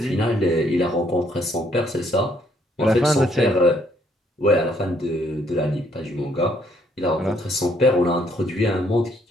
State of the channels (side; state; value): both; normal; correlation 0.68